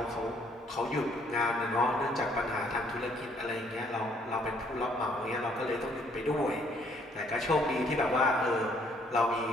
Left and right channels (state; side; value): normal; both; correlation 0.65